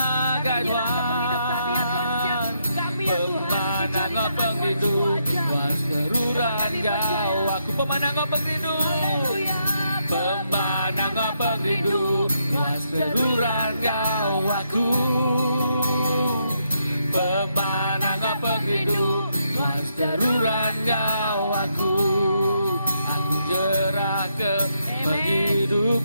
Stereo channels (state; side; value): inverted; both; correlation -0.78